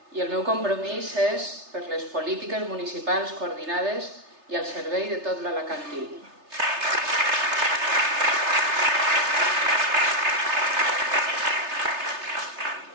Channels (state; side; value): late; left; 3.3 ms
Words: i el meu compromís és per les polítiques municipals coordinades i al servei de tot l'alacantí.